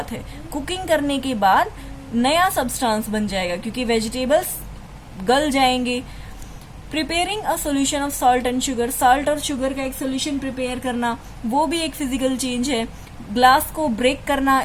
है. कुकिंग करने के बाद नया सब्सटेंस बन जाएगा क्योंकि वेजिटेबल्स गल जाएंगे. Preparing a solution of salt and sugar. Salt और शुगर का एक सोल्यूशन प्रिपेयर करना, वो भी एक फिजिकल चेंज है. ग्लास को ब्रेक करना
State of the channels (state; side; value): identical; both; correlation 1.00